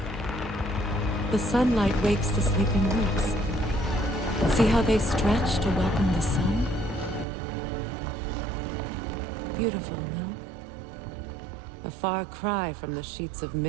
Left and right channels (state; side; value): drops out; left; at 7.2 s